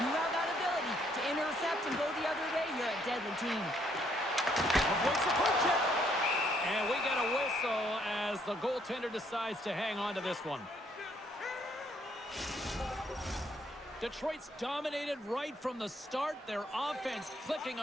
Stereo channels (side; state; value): both; normal; correlation 0.69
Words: you have that ability to intercept and go the other way, you're a deadly team. Avoids the poke check. And we get a whistle as the goaltender decides to hang on to this one. Detroit's dominated right from the start. Their offense clicking